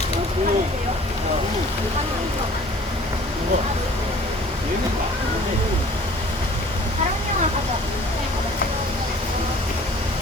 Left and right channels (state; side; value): normal; both; correlation 0.50